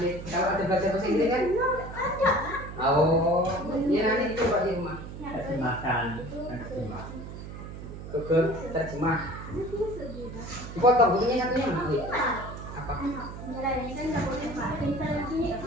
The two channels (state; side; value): noise; right; hum, 11 dB below the sound